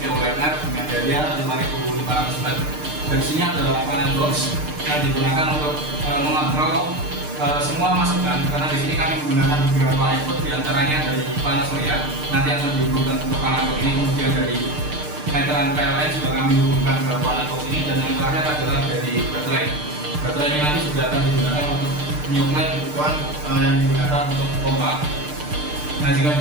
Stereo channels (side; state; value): left; late; 6.6 ms